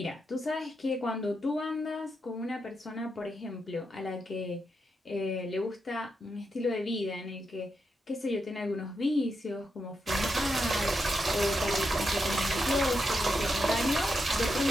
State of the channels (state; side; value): normal; both; correlation 0.84